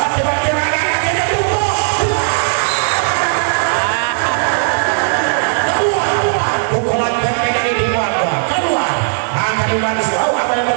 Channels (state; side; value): silent; left; 66 dB below the other